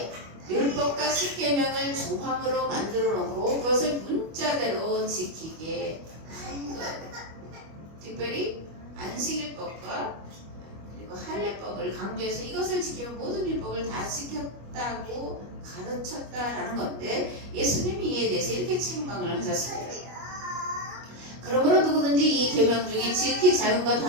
율법과 십계명을 조항으로 만들어 놓고 그것을 문자대로 지키게 한 거예요. 특별히 안식일법과 그리고 할례법을 강조해서 이것을 지키면 모든 율법을 다 지켰다고 가르쳤다라는 건데 예수님이 이에 대해서 이렇게 책망을 하셨습니다. 그러므로 누구든지 이 계명 중에 지극히 작은 것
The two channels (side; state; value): left; late; 25 ms